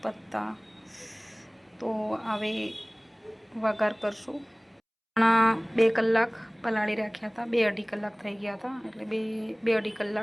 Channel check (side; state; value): both; identical; correlation 1.00